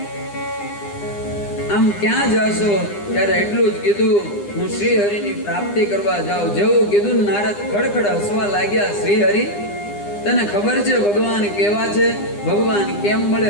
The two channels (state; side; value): late; right; 9.9 ms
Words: આમ ક્યાં જાશો? ત્યારે એટલું જ કીધું, હું શ્રી હરિની પ્રાપ્તિ કરવા જાઉં. જેવું કીધું નારદ ખડખડ હસવા લાગ્યા. શ્રી હરિ, તને ખબર છે ભગવાન કેવા છે? ભગવાન કેમ મળે